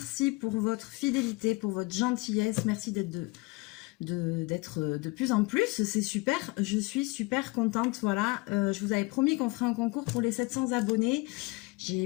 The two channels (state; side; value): quieter; right; 24.6 dB